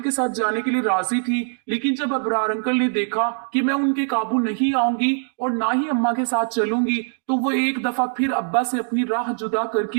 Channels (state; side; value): silent; left; 64 dB below the other